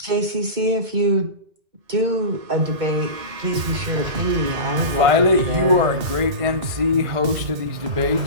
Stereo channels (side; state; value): left; late; 2.1 ms